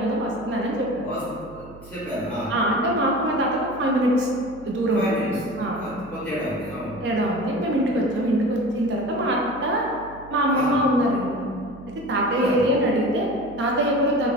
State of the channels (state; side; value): noise; right; hum, 20 dB below the sound